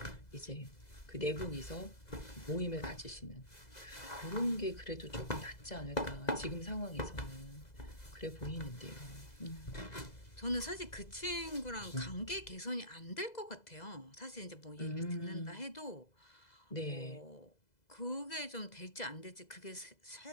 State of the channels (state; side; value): late; right; 2.0 ms